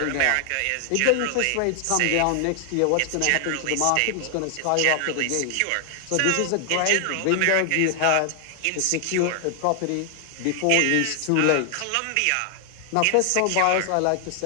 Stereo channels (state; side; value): different; both; correlation 0.00